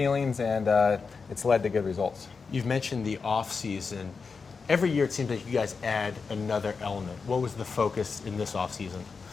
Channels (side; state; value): right; quieter; 5.0 dB